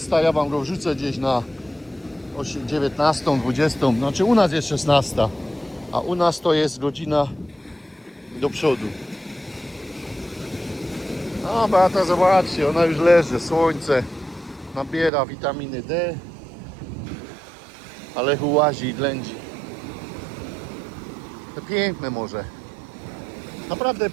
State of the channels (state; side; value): drops out; left; at 15.1 s